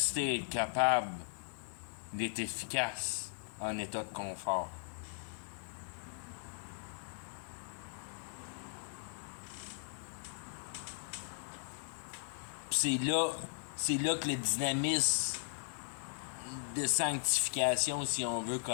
à être capable d'être efficace en état de confort. Puis c'est là que le dynamisme de sanctification, si on veut,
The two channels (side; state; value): right; silent; digital silence